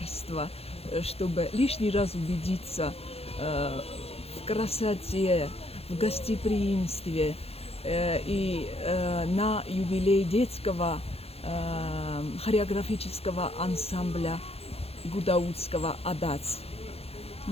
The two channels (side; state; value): right; late; 0.29 ms